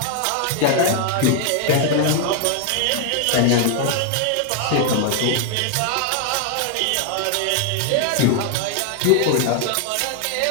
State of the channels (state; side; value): different; both; correlation 0.00